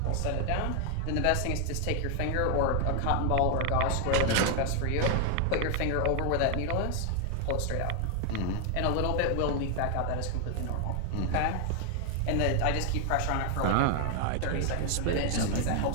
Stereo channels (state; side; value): different; both; correlation 0.00